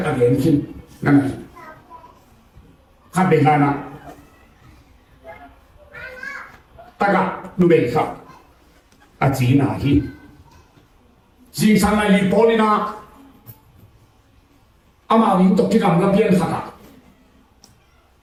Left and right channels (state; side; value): identical; both; correlation 1.00